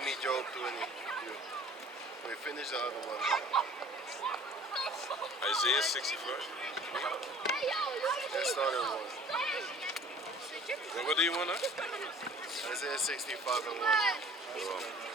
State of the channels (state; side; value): normal; both; correlation 0.49